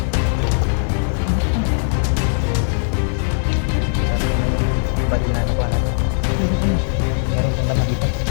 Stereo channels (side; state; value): right; silent; digital silence